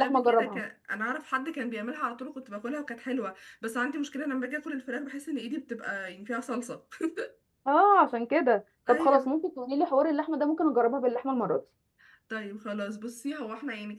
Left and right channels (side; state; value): both; identical; correlation 1.00